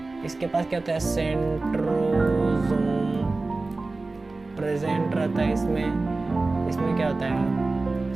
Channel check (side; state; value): left; quieter; 3.4 dB